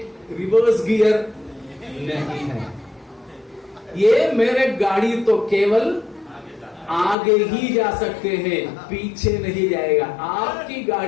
रिवर्स गियर नहीं है। ये मेरे गाड़ी तो केवल आगे ही जा सकते हैं, पीछे नहीं जाएगा। आपकी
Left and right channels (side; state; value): right; drops out; at 7.2 s